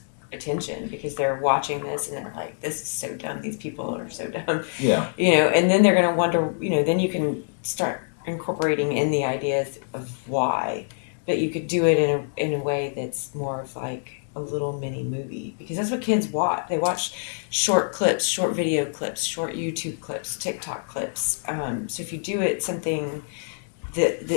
attention because they're watching this and they're like, this is so dumb. These people are so dumb. Yeah. You know, and then they're going to wonder, you know, then you can start incorporating in the ideas of why. But you could do it in a way that's more of like a little mini movie, because that's what kids watch. They watch short clips, short video clips, short YouTube clips, TikTok clips. So if you do it something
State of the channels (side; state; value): right; silent; digital silence